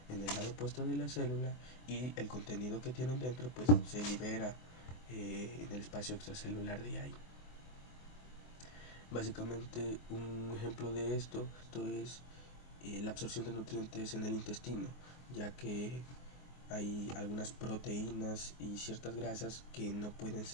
en el lado opuesto de la célula, y el contenido que tienen dentro pues se libera en el espacio extracelular de ahí. Básicamente un ejemplo de esto es la absorción de nutrientes en el intestino, ya que hay algunas proteínas y ciertas grasas que no pueden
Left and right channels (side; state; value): right; late; 24 ms